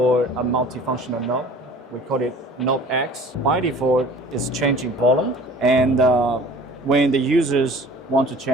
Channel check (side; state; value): both; normal; correlation 0.46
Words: a multifunctional knob. We call it Knob X. By default, it's changing volume. And when the users want to